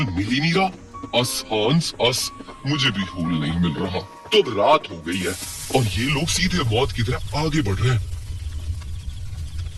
मिल ही नहीं रहा। अस हांस अस, मुझे भी होल नहीं मिल रहा। तो अब रात हो गई है और ये लोग सीधे मौत की तरफ आगे बढ़ रहे हैं।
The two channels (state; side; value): identical; both; correlation 1.00